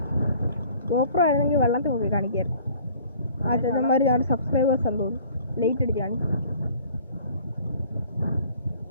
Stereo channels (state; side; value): inverted; both; correlation -0.51